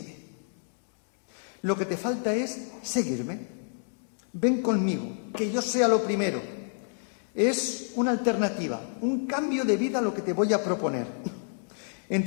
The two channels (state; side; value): silent; right; digital silence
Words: Lo que te falta es seguirme. Ven conmigo, que yo sea lo primero. Es una alternativa, un cambio de vida lo que te voy a proponer.